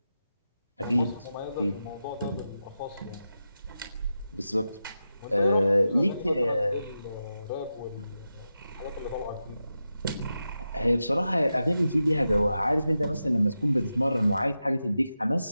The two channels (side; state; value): both; inverted; correlation -0.90